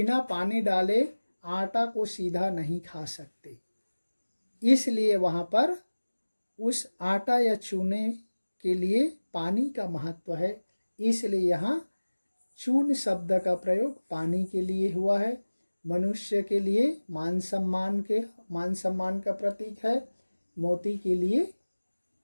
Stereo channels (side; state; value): both; inverted; correlation -1.00